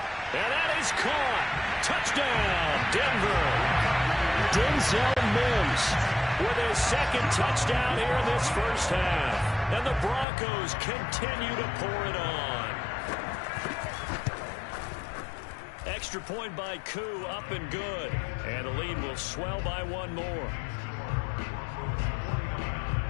And that is caught. Touchdown, Denver. Denzel Mims with his 2nd touchdown here in this first half. And the Broncos continue to pour it on. Extra point by Koo, up and good. And the lead will swell by one more.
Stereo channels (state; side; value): drops out; right; at 10.2 s